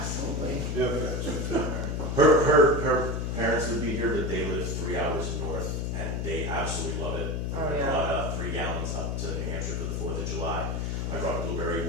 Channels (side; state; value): left; noise; hum, 1 dB below the sound